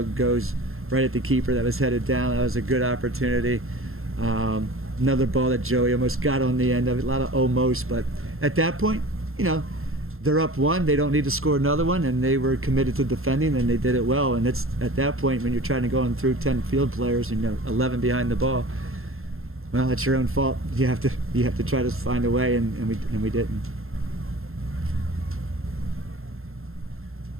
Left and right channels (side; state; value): left; late; 0.61 ms